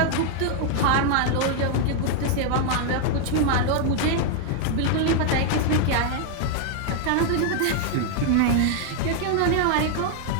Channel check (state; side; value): different; both; correlation 0.00